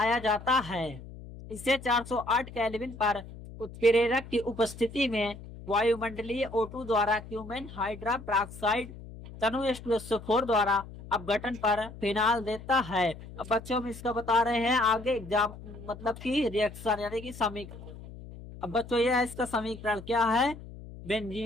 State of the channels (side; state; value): left; noise; hum, 15 dB below the sound